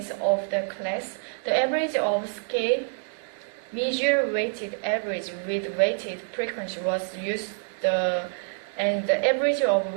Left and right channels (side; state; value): left; silent; digital silence